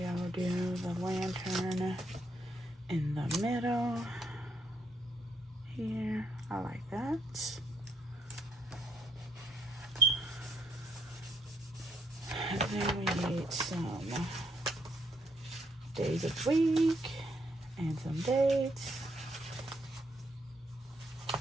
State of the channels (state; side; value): normal; both; correlation 0.73